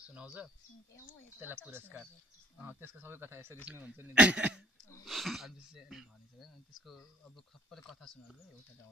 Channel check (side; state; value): both; normal; correlation 0.60